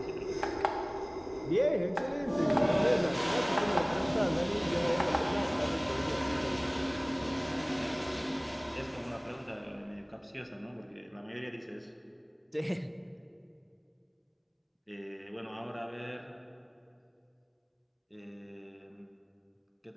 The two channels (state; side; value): identical; both; correlation 1.00